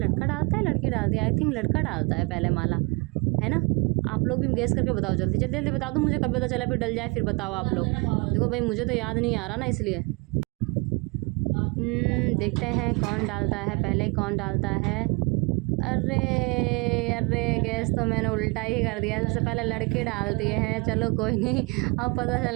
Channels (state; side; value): quieter; left; 29.5 dB